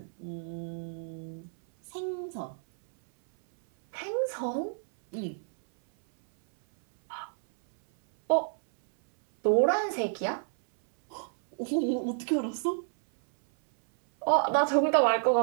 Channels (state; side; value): silent; left; 58 dB below the other